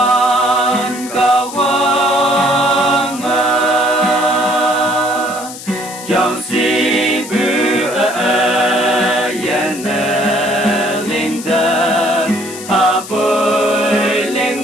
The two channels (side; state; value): left; noise; hiss, 13 dB below the sound